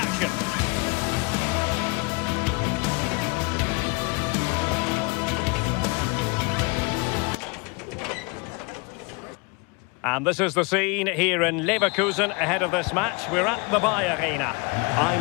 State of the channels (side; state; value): right; quieter; 29.5 dB